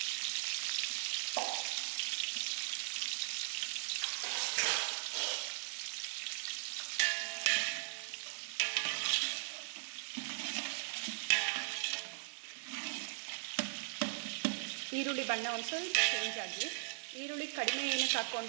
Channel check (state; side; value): silent; left; digital silence